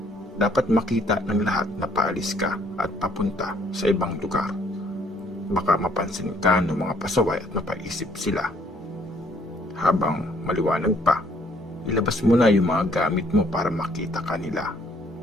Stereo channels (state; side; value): normal; both; correlation 0.64